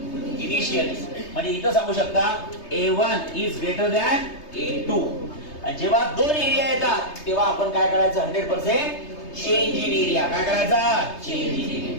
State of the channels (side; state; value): right; late; 3.3 ms